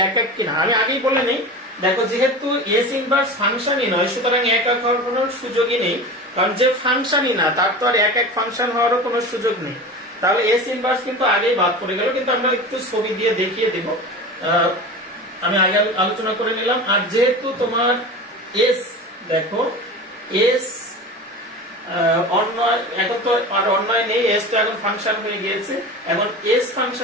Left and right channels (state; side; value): normal; both; correlation 0.31